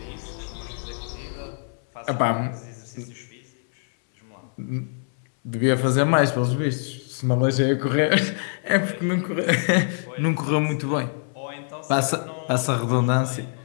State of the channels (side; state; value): right; silent; 62 dB below the other